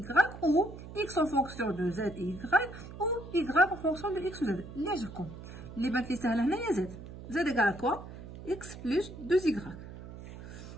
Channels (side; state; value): right; noise; hum, 13 dB below the sound